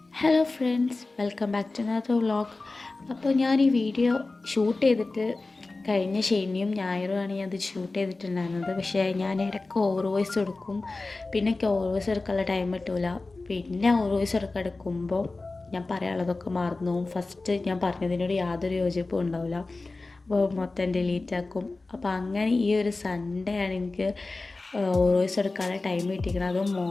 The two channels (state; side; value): quieter; right; 3.4 dB